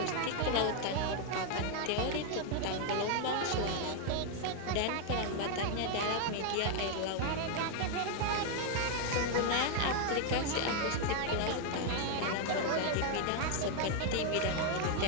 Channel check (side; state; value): both; different; correlation 0.01